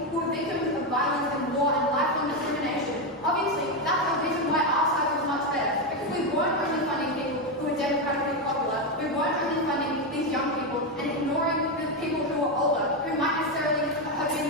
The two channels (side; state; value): both; normal; correlation 0.08